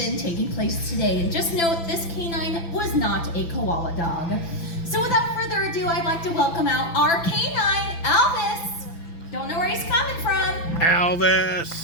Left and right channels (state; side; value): late; right; 6.0 ms